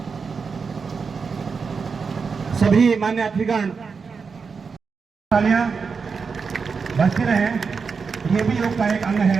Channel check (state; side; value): quieter; left; 5.3 dB